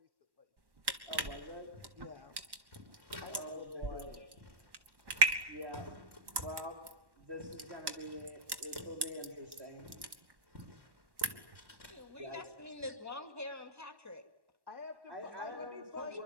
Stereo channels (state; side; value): late; left; 1.1 ms